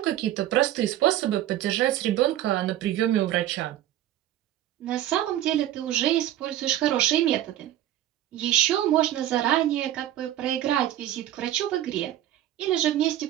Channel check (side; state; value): left; quieter; 12.7 dB